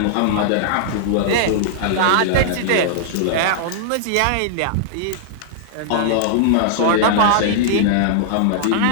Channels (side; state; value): both; different; correlation -0.01